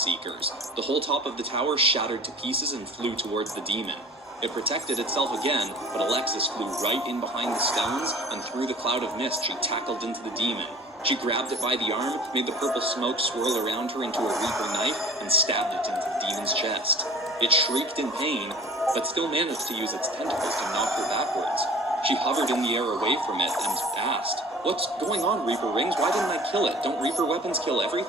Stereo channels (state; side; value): normal; both; correlation 0.43